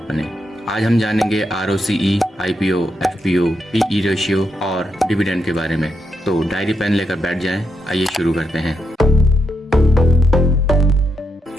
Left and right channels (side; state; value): both; normal; correlation 0.82